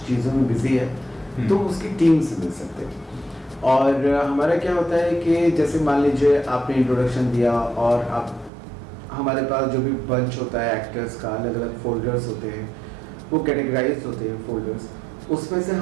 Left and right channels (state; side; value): drops out; left; at 8.5 s